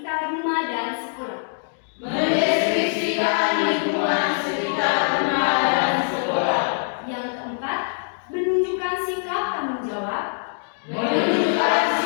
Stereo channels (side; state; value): right; silent; digital silence